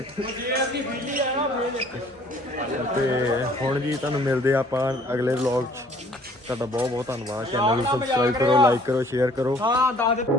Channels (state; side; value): normal; both; correlation 0.57